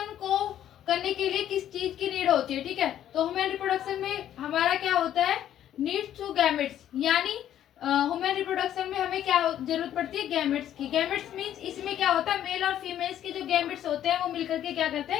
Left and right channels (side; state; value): right; quieter; 11.2 dB